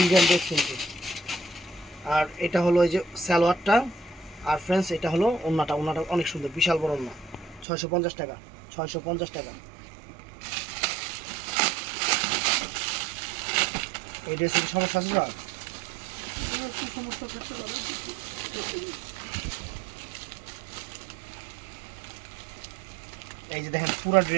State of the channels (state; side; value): drops out; left; at 7.7 s